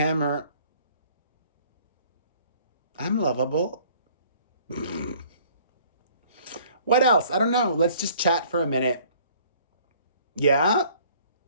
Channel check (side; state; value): both; inverted; correlation -0.56